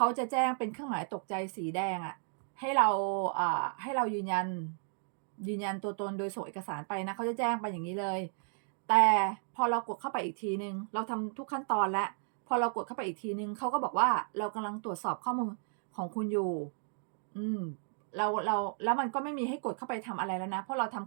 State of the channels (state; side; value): silent; left; 55 dB below the other